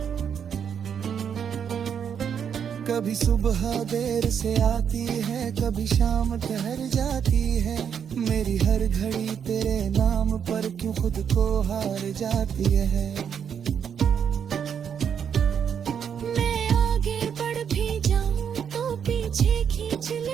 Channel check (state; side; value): quieter; left; 7.8 dB